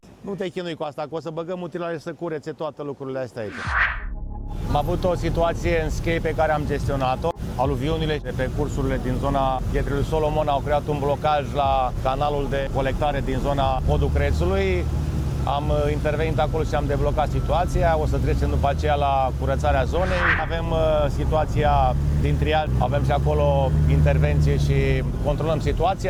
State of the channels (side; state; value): both; identical; correlation 1.00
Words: Nu te chinui cu asta, că o să băgăm utilaje să curețe toate lucrurile astea aici. Am avut o situație în Schei pe care am gestionat-o. Aluviunile de pe cursurile din zona Pietrelui Solomon au creat un blocaj la canalul de colectare din zona podul Crețului. Am intervenit acolo și am deblocat situația. O să trecem după aceea la curățarea zonei. Avem situația din triaj, avem și acolo intervenție și controlăm